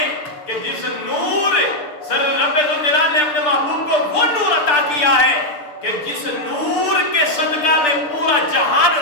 کہ جس نور سر رب ذوالجلال نے اپنے محبوب کو وہ نور عطا کیا ہے کہ جس نور کے صدقہ میں پورا جہان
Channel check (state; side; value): late; right; 6.8 ms